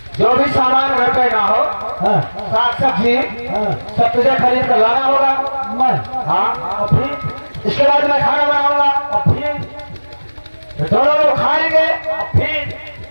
जो भी सामान घर पे ना हो, हाँ साग सब्जी हाँ सब तुझे खरीद कर लाना होगा। मैं हाँ और फिर इसके बाद मैं खाना बनाऊंगा, और फिर तो दोनों लोग खाएंगे, और फिर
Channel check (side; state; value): both; inverted; correlation -1.00